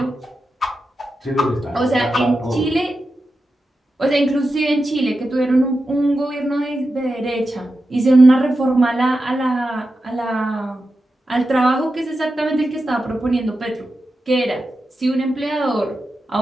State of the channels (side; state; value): both; normal; correlation 0.90